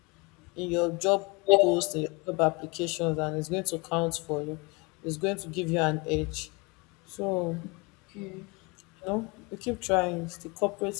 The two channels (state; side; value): quieter; right; 27.4 dB